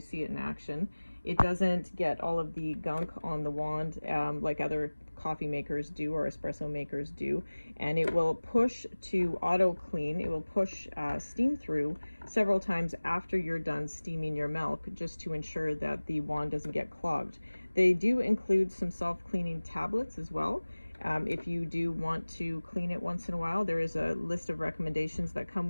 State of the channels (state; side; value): inverted; both; correlation -1.00